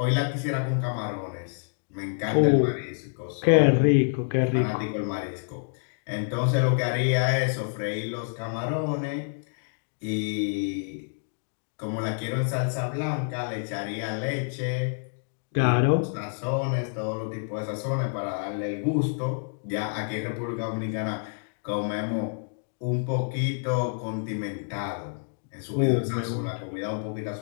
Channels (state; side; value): silent; right; digital silence